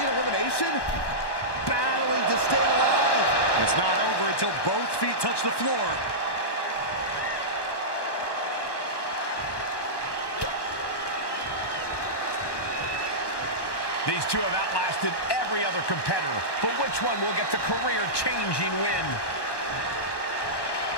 elimination? Battling to stay alive. It's not over until both feet touch the floor. These two have outlasted every other competitor, but which one will get the career-changing win?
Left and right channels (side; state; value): right; late; 1.1 ms